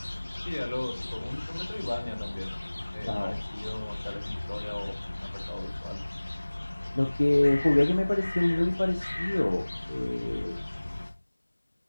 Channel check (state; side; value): inverted; both; correlation -1.00